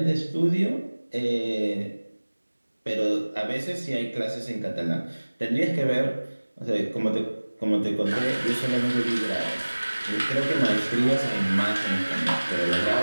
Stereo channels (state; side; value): inverted; both; correlation -1.00